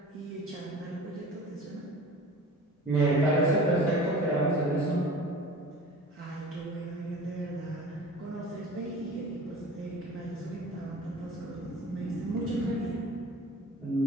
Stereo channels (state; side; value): normal; both; correlation 0.41